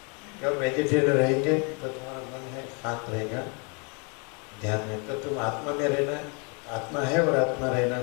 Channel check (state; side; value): quieter; right; 34.8 dB